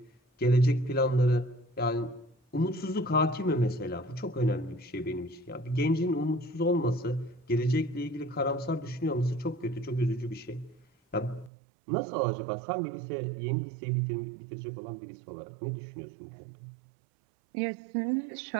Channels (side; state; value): left; drops out; at 11.5 s